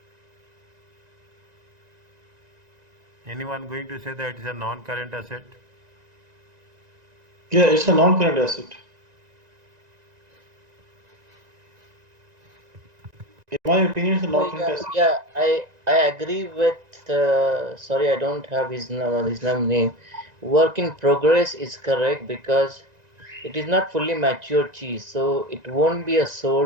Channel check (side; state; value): left; late; 1.9 ms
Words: Anyone going to say that it's a non-current asset? Yeah, it's a non-current asset. In my opinion, it's a So non-current yeah, asset. yeah, I agree with sorry, I don't have his name. Work in progress is correct because it is not fully mature cheese, so it won't be a